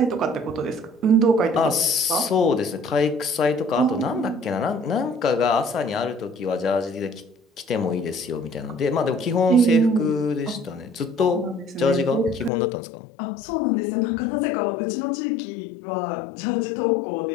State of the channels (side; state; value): right; drops out; at 12.5 s